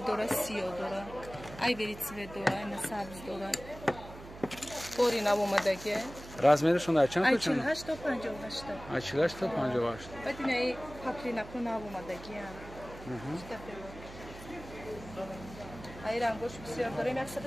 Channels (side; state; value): right; noise; hum, 15 dB below the sound